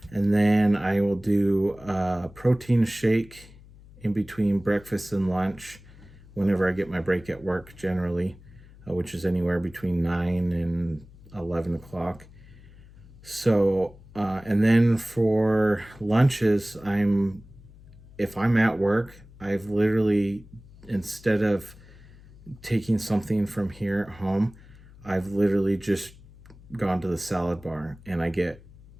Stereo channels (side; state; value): left; noise; hum, 22 dB below the sound